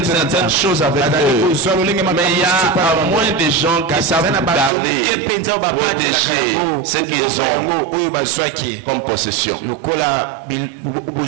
certaines choses avec eux. Mais il y a moins de gens qui savent garder, protéger ce qu'ils ont comme possession.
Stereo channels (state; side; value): drops out; left; at 4.7 s